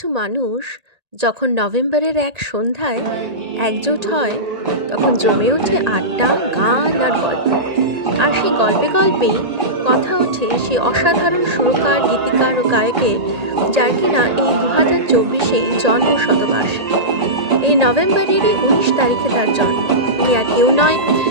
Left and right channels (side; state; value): left; late; 1.8 ms